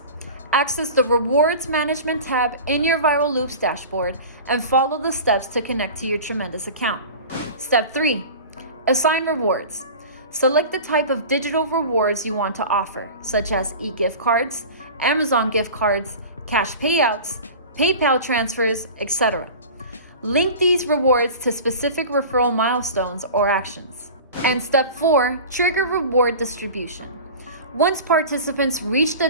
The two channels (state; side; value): inverted; both; correlation -0.36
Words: Access the Rewards Management tab in your Viral Loops dashboard and follow the steps to connect to your Tremendous account. Step 3. Assign rewards. Select the type of digital rewards you want to offer, such as e-gift cards, Amazon gift cards, cash payouts, PayPal transfers, etc. Link these rewards to specific referral milestones or actions. And step 4, trigger reward distribution. Once participants reach